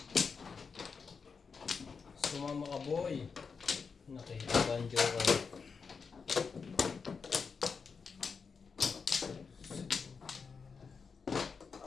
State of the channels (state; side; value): quieter; right; 5.4 dB